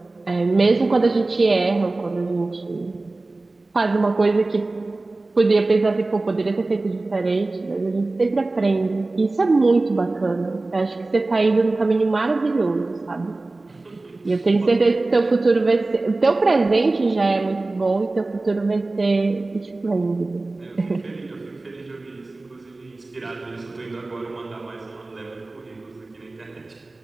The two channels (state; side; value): quieter; left; 3.2 dB